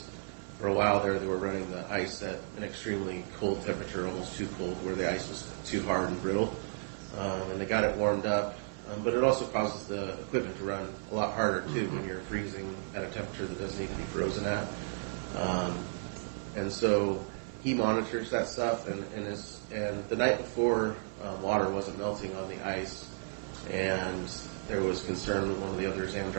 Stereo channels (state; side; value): silent; left; 56 dB below the other